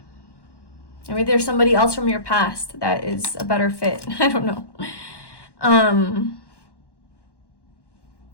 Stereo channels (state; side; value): late; right; 1.1 ms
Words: Maybe there's somebody else from your past that is a better fit. I don't know.